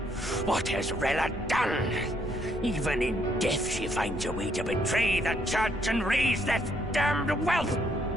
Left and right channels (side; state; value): left; noise; rumble, 16 dB below the sound